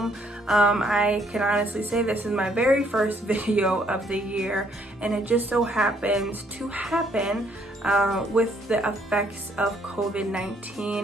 I can honestly say this is my very first video of the year, and it just so happens to happen with the effects of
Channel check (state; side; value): normal; both; correlation 0.67